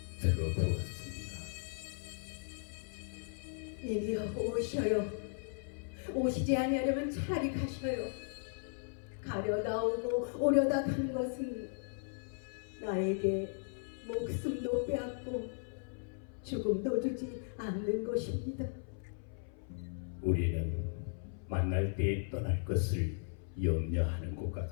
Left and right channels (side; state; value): right; silent; 53 dB below the other